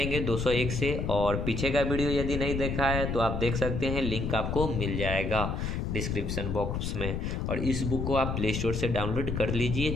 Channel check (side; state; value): left; noise; rumble, 2 dB below the sound